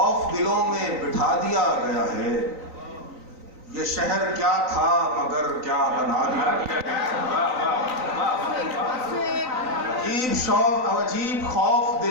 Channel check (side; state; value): left; late; 3.9 ms